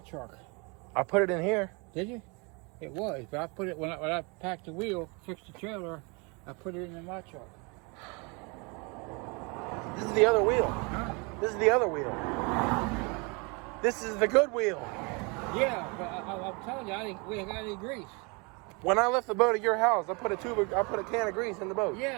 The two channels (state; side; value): quieter; left; 30.5 dB